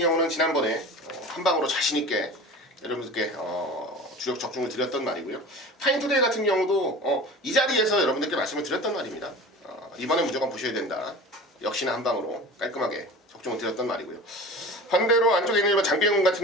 지난번에 한 방으로 자신있게 여러분들께 주력 적중을 드렸던 말이고요. 파인투데이 같은 경우도 이 자리에서 여러분들께 말씀을 드렸던 말입니다. 이번에 무조건 보셔야 된다. 역시나 한 방으로 깔끔하게 적중을 드렸던 말이고요. 반대로 안쪽에 있는 1번 장비행군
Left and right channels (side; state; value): both; normal; correlation 0.36